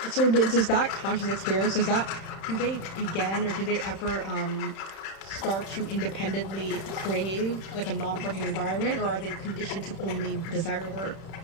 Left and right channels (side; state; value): right; late; 31 ms